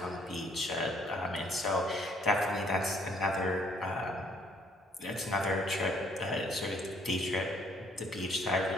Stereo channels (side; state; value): both; normal; correlation 0.64